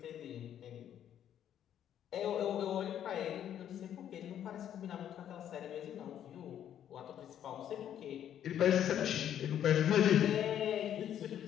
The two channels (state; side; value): quieter; right; 10.2 dB